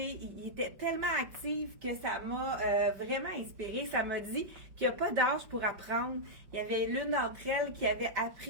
Ils étaient tellement actifs que ça m'a vraiment inspirée. Ça m'a dit qu'il n'y a pas d'âge pour apprendre. Il y avait l'une d'entre elles qui avait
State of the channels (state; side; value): late; left; 5.3 ms